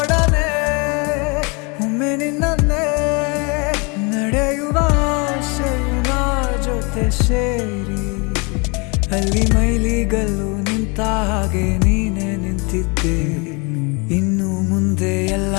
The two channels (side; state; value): right; quieter; 30.7 dB